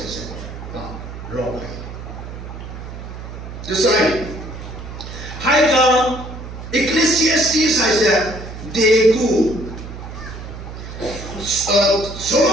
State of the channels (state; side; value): noise; right; hum, 11 dB below the sound